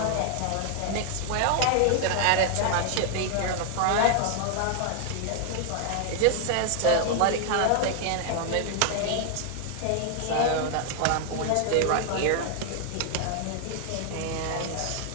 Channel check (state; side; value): different; both; correlation 0.00